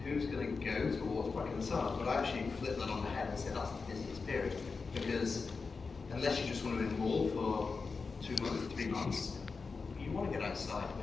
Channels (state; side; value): quieter; right; 4.6 dB